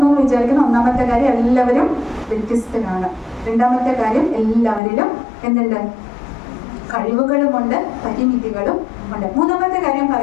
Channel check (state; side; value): drops out; right; at 4.8 s